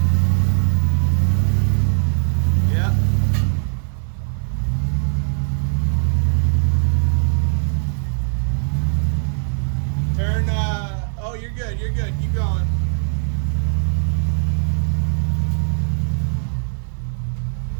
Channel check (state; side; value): silent; left; digital silence